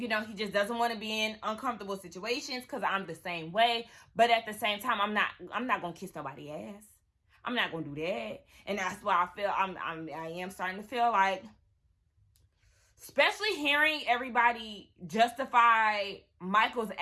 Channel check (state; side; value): identical; both; correlation 1.00